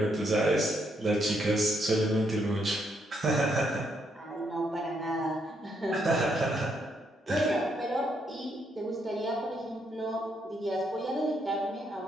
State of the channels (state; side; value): normal; both; correlation 0.76